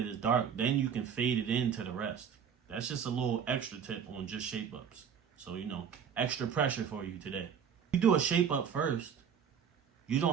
it's dark, then you can fade it into the rest. That's just a little extra tip on just shape ups. So, extra pressure for you today. You do a shape up first. You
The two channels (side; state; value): left; quieter; 7.6 dB